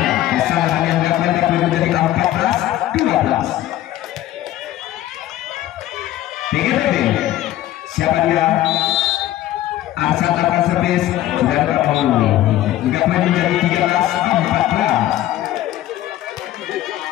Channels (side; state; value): right; quieter; 14.0 dB